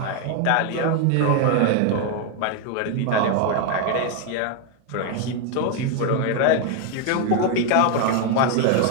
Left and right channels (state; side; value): different; both; correlation 0.01